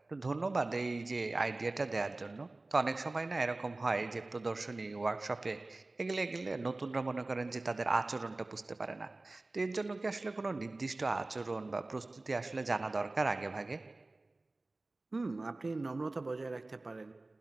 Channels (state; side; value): quieter; left; 3.1 dB